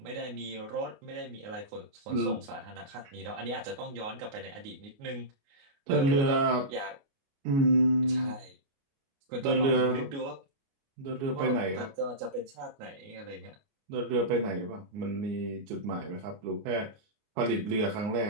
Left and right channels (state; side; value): late; left; 29 ms